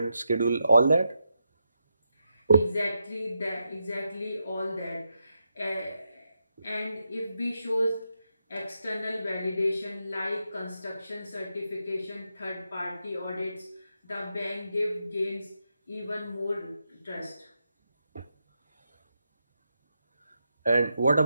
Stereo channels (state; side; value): inverted; both; correlation -0.85